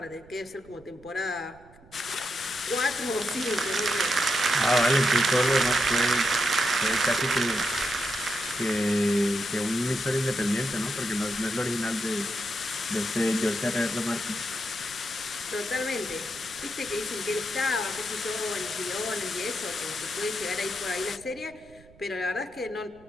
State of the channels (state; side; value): noise; right; rumble, 25 dB below the sound